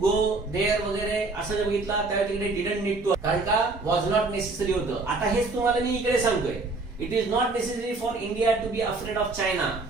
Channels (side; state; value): left; quieter; 3.5 dB